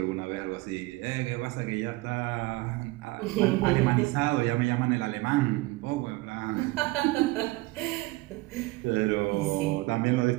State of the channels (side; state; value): left; quieter; 21.4 dB